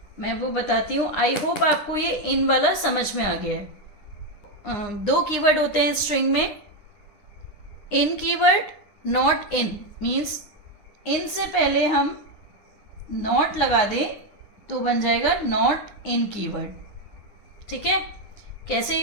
मैं वो बताती हूँ। आई होप आपको ये इन वाला समझ में आ गया है। दो कीवर्ड होते हैं स्ट्रिंग में, in keyword, not in. Means in से पहले हम नॉट लगा दें तो बन जाएगा नॉट इन कीवर्ड, ठीक है? कैसे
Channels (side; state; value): right; late; 9.8 ms